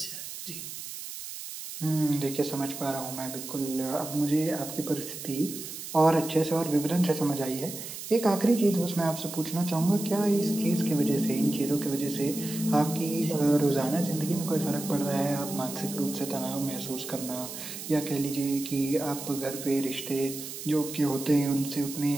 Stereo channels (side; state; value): right; noise; hiss, 9 dB below the sound